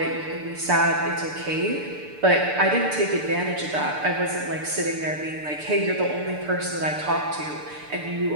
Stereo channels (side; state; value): left; late; 6.8 ms